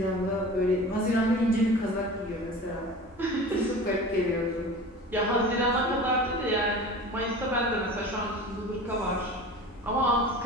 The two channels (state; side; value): normal; both; correlation 0.37